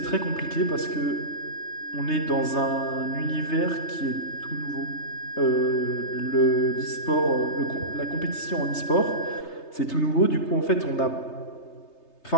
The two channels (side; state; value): right; late; 3.3 ms